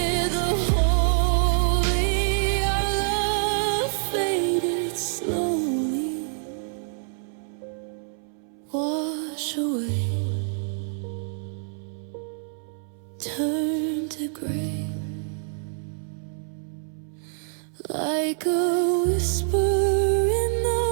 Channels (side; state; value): left; silent; 59 dB below the other